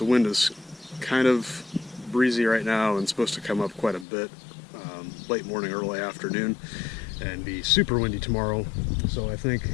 wind is kind of breezy right now and supposed to come up quite a bit late morning, early afternoon, and be super windy tomorrow. So I think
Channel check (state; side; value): drops out; right; at 4.0 s